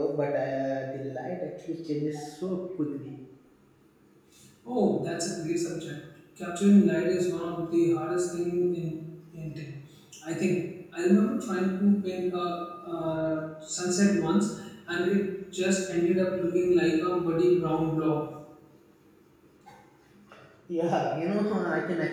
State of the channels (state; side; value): identical; both; correlation 1.00